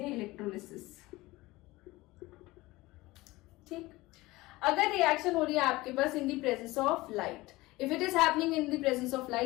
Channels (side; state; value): right; quieter; 20.0 dB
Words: इलेक्ट्रोलिसिस. ठीक, अगर रिएक्शन हो रही है आपके पास in the presence of light, if it is happening in the presence of